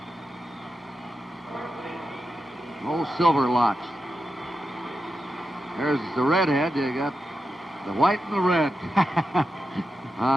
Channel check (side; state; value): both; normal; correlation 0.89